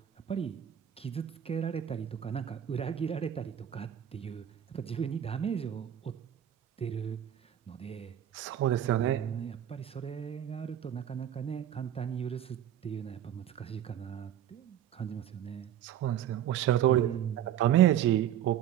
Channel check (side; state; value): left; quieter; 10.6 dB